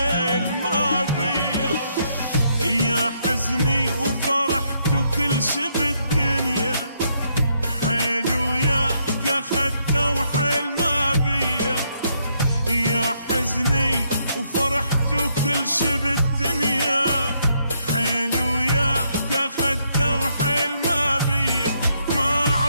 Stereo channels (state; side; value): inverted; both; correlation -0.74